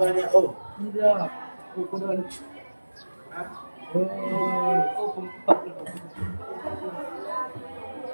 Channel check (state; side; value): inverted; both; correlation -1.00